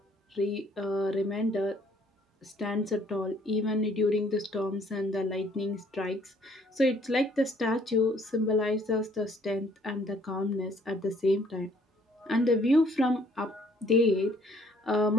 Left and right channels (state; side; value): normal; both; correlation 0.62